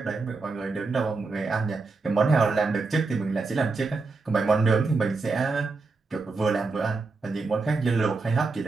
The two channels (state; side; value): quieter; left; 4.0 dB